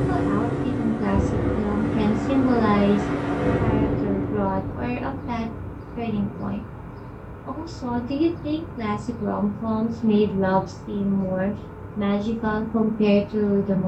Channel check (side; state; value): both; identical; correlation 1.00